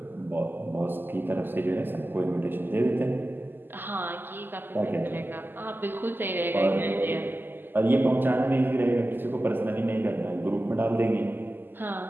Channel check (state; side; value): late; left; 0.094 ms